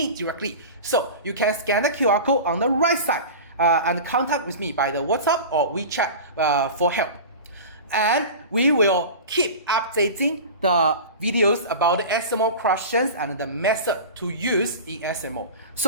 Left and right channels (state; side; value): inverted; both; correlation -0.32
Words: directly. So you can scan the QR code on the right side and contact with me by the WhatsApp or WeChat for help. And we will keep updating the videos about the SMO questions and the method to use in SMO.